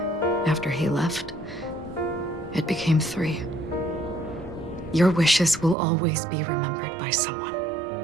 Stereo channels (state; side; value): drops out; left; at 5.8 s